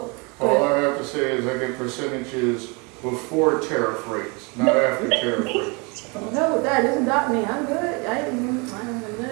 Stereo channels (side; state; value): left; quieter; 29.6 dB